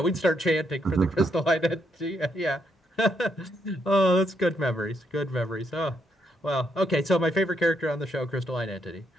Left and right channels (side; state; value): both; normal; correlation 0.76